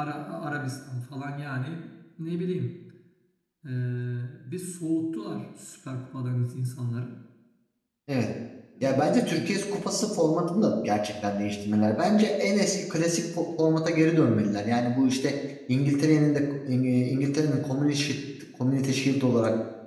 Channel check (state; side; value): identical; both; correlation 1.00